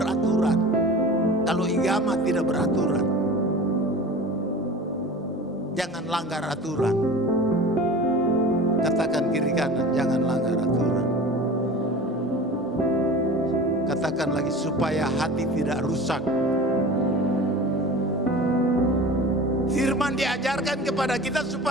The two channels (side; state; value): both; normal; correlation 0.36